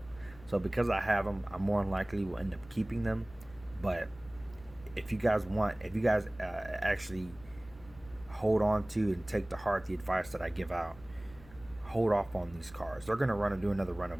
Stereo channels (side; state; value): left; noise; hum, 21 dB below the sound